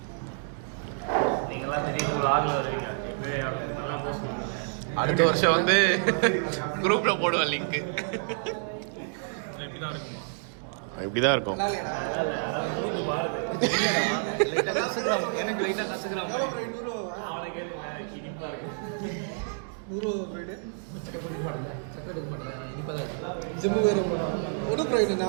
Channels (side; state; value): left; silent; digital silence